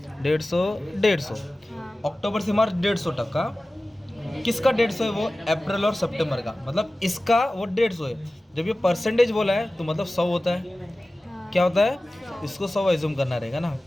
150 150। अक्टूबर से मार्च 150%। किसका 150 है? वो अप्रैल और सितंबर का, मतलब इसका वो 150 है। जब ये परसेंटेज बोला है तो मतलब 100 होता है। क्या होता है? इसको 100 एज्यूम करना रहेगा ना।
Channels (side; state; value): both; normal; correlation 0.96